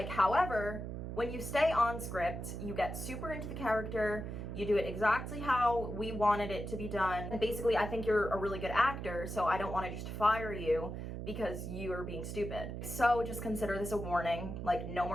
however, when you stay on script, you get super into the character, you do it exactly how we wanted it to be done. And basically, I think you're a really good actor, so I don't want to just fire you because you are being stupid. So just consider this a warning. Like, no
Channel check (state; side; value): noise; right; hum, 6 dB below the sound